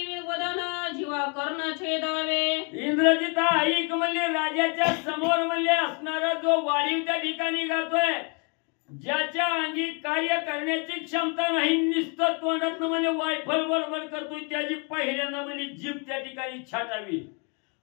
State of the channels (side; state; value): right; quieter; 34.3 dB